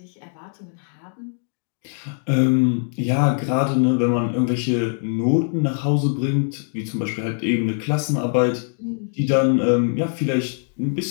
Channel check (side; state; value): right; silent; digital silence